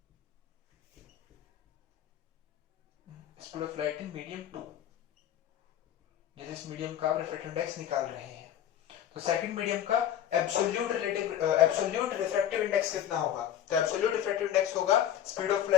Speed of light in medium 2, जिस मीडियम का आप रिफ्रैक्टिव इंडेक्स निकाल रहे हैं। तो सेकंड मीडियम का एब्सोल्यूट रिफ्रैक्टिव इंडेक्स कितना होगा? तो एब्सोल्यूट रिफ्रैक्टिव इंडेक्स होगा speed of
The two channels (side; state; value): right; quieter; 10.6 dB